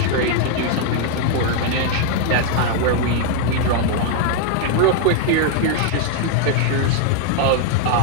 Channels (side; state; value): both; different; correlation 0.00